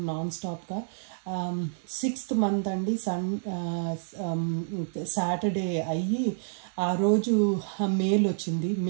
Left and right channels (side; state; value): left; silent; 58 dB below the other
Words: నాన్ స్టాప్గా. 6th month అండి, సాటర్డే అయ్యి ఆ రోజు మెయిల్ వచ్చింది.